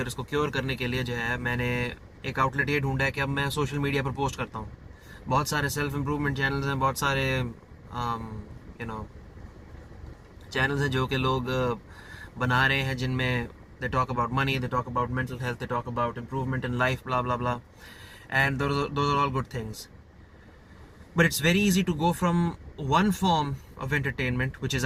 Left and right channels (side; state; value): both; identical; correlation 1.00